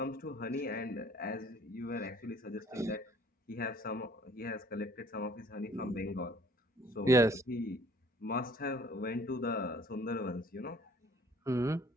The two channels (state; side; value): normal; both; correlation 0.55